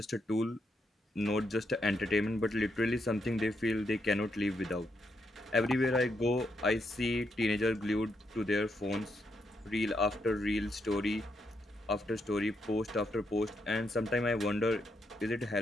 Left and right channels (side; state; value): both; normal; correlation 0.80